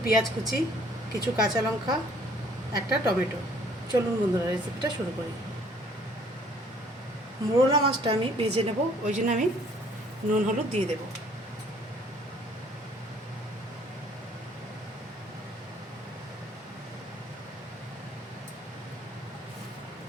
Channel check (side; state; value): both; normal; correlation 0.59